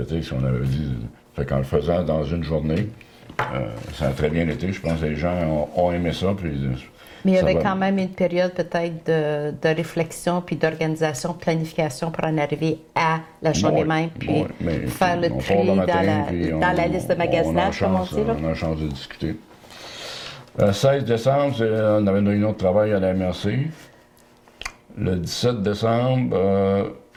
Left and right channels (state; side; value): identical; both; correlation 1.00